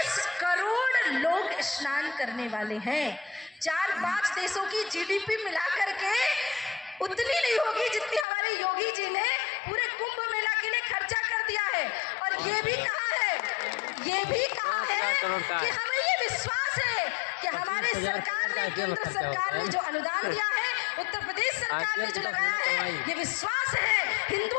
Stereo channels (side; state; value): right; drops out; at 8.2 s